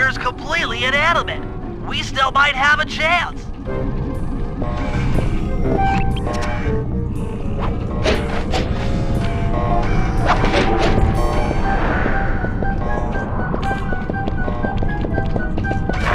completely inanimate. We still might have a chance.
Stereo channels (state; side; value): identical; both; correlation 1.00